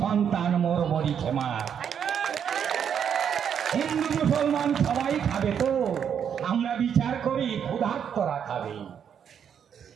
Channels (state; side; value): quieter; left; 8.1 dB